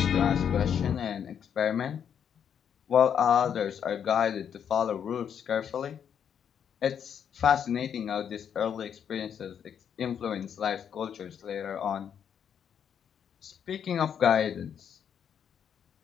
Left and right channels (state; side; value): quieter; right; 8.2 dB